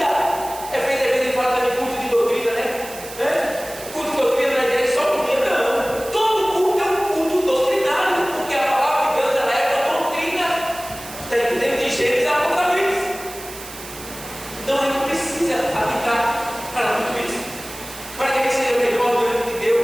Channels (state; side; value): noise; right; hiss, 14 dB below the sound